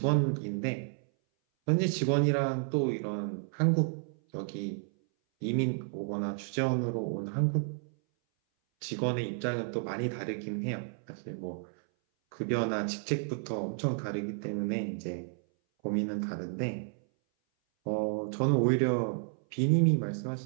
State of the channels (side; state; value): left; silent; 57 dB below the other